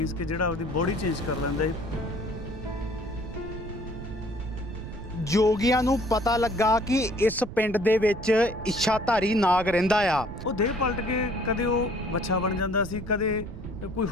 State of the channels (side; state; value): right; noise; rumble, 11 dB below the sound